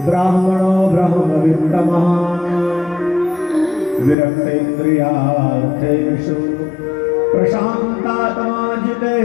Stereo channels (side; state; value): right; drops out; at 4.2 s